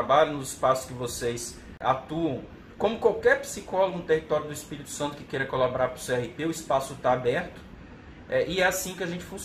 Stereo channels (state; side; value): identical; both; correlation 1.00